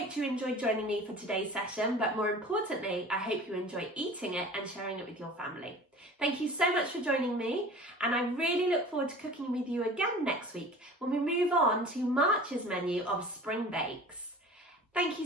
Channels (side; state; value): both; normal; correlation 0.41